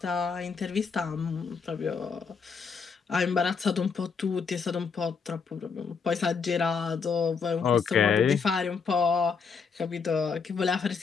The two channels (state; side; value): quieter; right; 5.6 dB